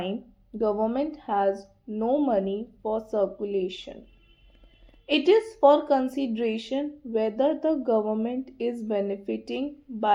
government has no money for circulation. It is for consideration whether the government is benefiting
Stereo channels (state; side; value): identical; both; correlation 1.00